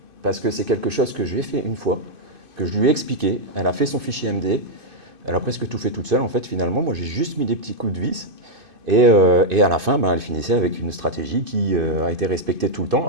Parce que c'est quelque chose que je lui ai fait une fois, que je lui ai expliqué. Elle a fait son fichier MD. Elle a presque tout fait toute seule, en fait, finalement. Moi, j'ai juste mis des petits coups de vis. Et à la fin, elle finissait avec une stratégie qui a été respectée tout le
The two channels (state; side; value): late; left; 2.5 ms